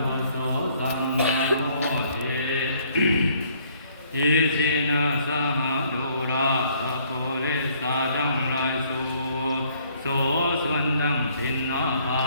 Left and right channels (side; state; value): both; inverted; correlation -0.63